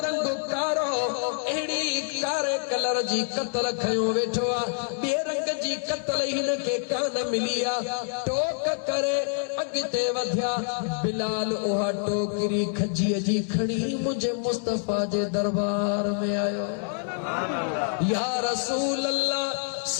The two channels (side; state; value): right; silent; 60 dB below the other